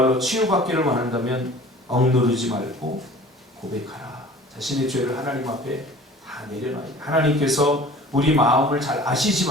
치유받기를 원한다면 억누르지 말고 고백하라. 자신의 죄를 하나님 앞에 다 내려놔야 돼요. 하나님께서 우리 마음을 잘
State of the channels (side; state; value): both; normal; correlation 0.45